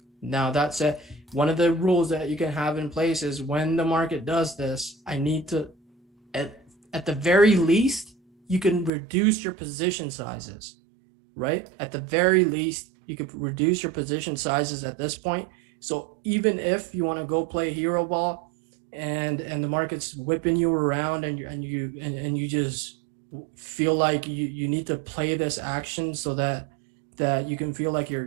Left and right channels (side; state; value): left; drops out; at 8.9 s